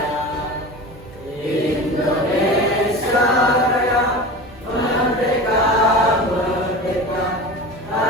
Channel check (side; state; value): both; normal; correlation 0.32